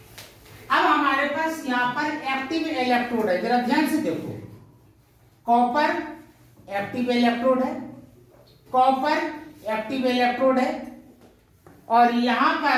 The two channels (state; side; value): identical; both; correlation 1.00